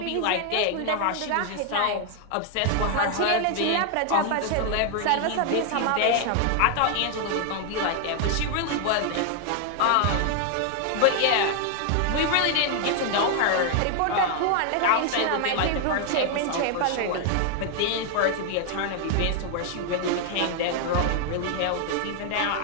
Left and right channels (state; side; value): different; both; correlation 0.00